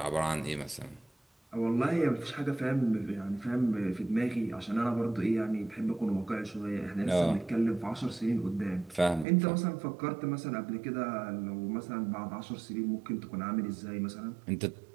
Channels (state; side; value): drops out; left; at 9.2 s